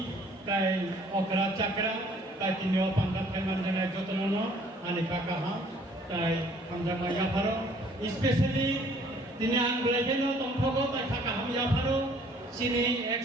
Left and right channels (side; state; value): both; normal; correlation 0.58